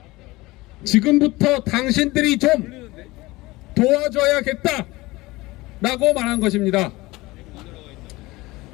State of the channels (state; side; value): quieter; right; 20.7 dB